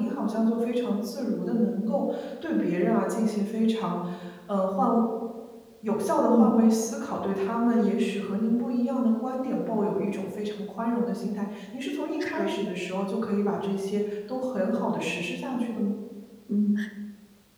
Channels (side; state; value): both; identical; correlation 1.00